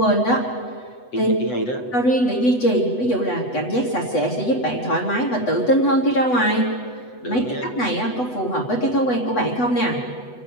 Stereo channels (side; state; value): right; late; 8.1 ms